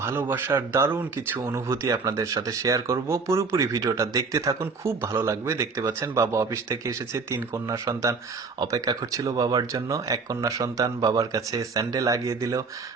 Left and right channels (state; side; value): quieter; left; 4.6 dB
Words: ভালোবাসার দারুণ কিছু অনুভূতি আপনাদের সাথে শেয়ার করব। পুরোপুরি ভিডিওটা দেখতে থাকুন, খুব ভালো লাগবে। দেখতে পাচ্ছেন বাবা অফিস থেকে এসেছে, 3 কন্যা সন্তান অপেক্ষা করছিল বাবার জন্য। এক কন্যা সন্তান বাবার কাছে স্যান্ডেল লাগিয়ে দিল,